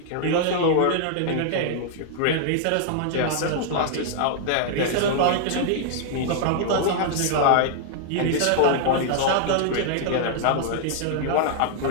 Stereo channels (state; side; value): different; both; correlation -0.01